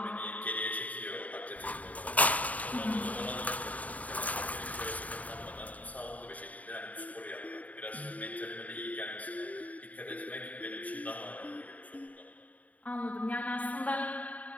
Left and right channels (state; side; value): late; right; 0.071 ms